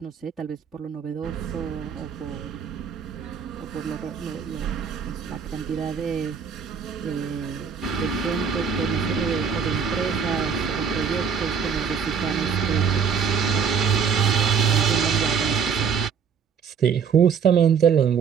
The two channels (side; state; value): left; quieter; 6.6 dB